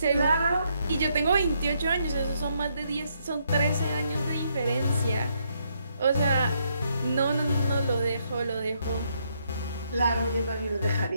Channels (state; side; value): inverted; both; correlation -0.74